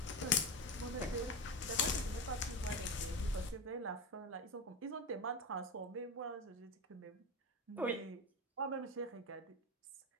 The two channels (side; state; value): both; normal; correlation 0.20